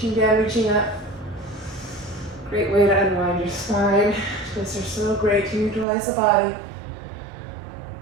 down, reaching up. Great way to unwind your spine. Twists are so great to utilize the body.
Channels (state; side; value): drops out; left; at 5.9 s